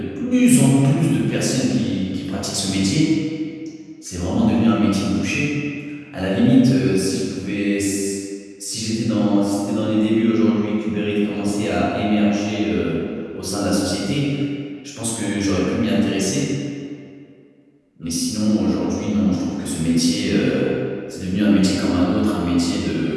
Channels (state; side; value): identical; both; correlation 1.00